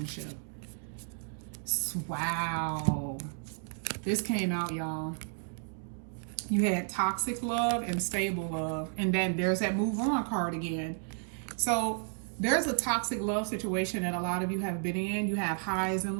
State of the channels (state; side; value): silent; left; 56 dB below the other